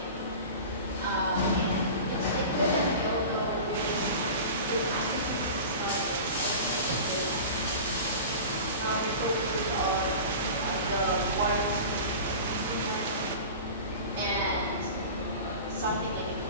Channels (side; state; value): both; inverted; correlation -0.34